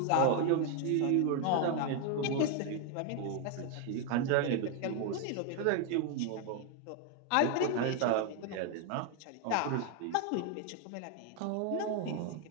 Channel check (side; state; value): both; different; correlation 0.01